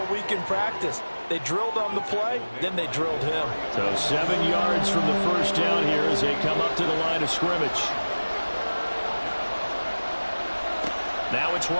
week in practice. They drilled on the play, then they drilled him. So 7 yards from the first down here as they come up to the line of scrimmage. Now it's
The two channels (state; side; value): inverted; both; correlation -1.00